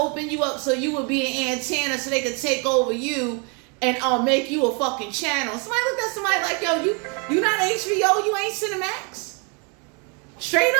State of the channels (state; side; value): quieter; left; 35.4 dB